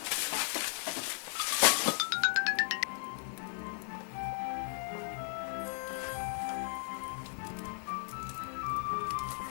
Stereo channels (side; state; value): right; silent; digital silence